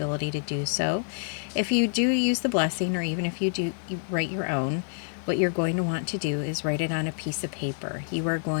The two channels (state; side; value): silent; right; digital silence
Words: to do so. If you do use the blessing, or even if you write your own, what you're going to want to do is write it on a piece of paper. You are